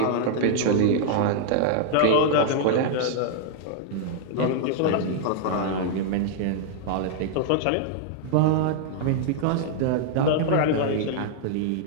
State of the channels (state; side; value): different; both; correlation -0.01